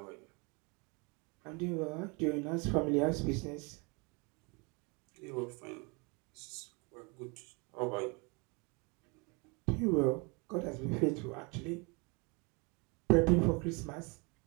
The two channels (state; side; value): quieter; left; 30.7 dB